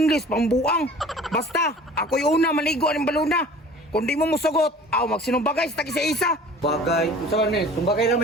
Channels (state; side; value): normal; both; correlation 0.45